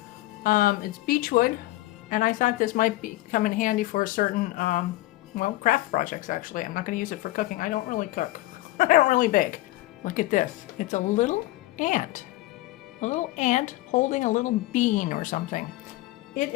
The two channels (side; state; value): right; quieter; 17.9 dB